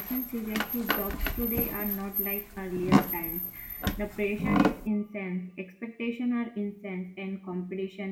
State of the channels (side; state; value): both; identical; correlation 1.00